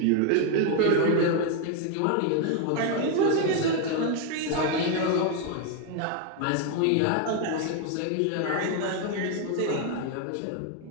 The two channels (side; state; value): both; different; correlation 0.01